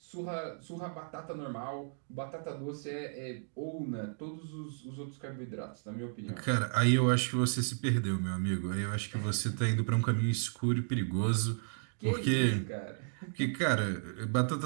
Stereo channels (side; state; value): left; silent; digital silence